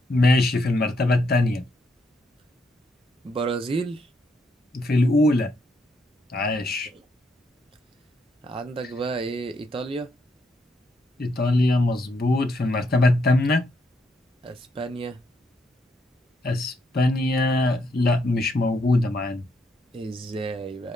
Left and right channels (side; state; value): both; normal; correlation 0.76